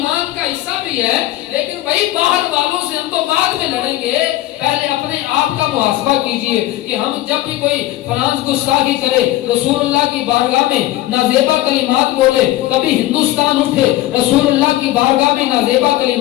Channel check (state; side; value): quieter; right; 15.6 dB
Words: کا حصہ بھی ہے. لیکن بھائی باہر والوں سے ہم تو بعد میں لڑیں گے، پہلے اپنے آپ کا محاسبہ کیجئے کہ ہم جب بھی کوئی فرانس گستاخی کرے، رسول اللہ کی بارگاہ میں نازیبا کلمات بولے، کبھی ہندوستان اٹھے رسول اللہ کی بارگاہ میں نازیبا